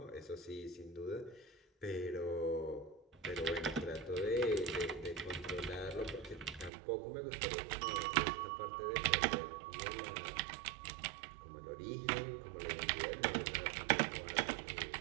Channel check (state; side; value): drops out; left; at 6.7 s